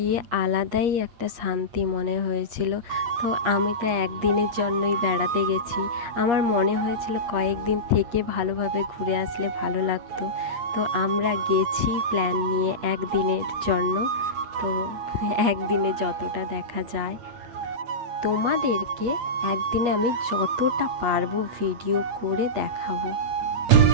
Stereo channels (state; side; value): late; left; 8.4 ms